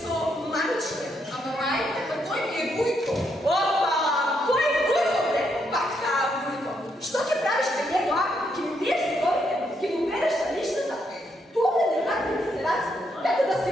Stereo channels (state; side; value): normal; both; correlation 0.77